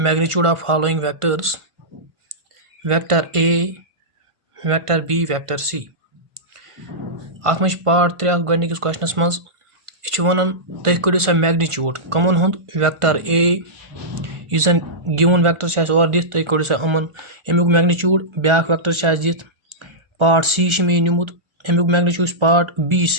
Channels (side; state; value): left; late; 1.5 ms